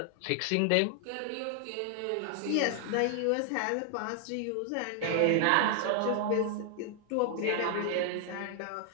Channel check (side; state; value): both; different; correlation 0.00